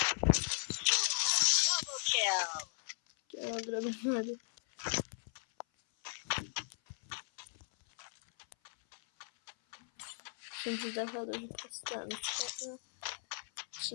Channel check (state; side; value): silent; right; 53 dB below the other